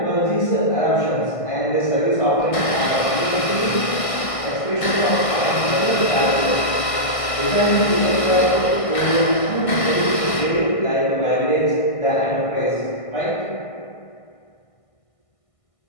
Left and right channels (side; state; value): right; late; 1.6 ms